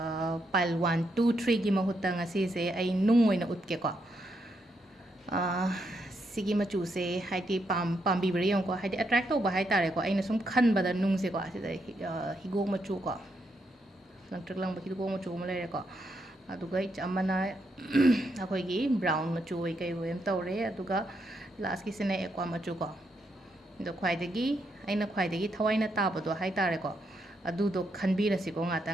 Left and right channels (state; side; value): normal; both; correlation 0.79